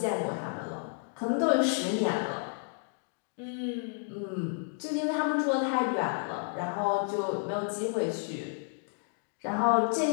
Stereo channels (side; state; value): right; silent; 57 dB below the other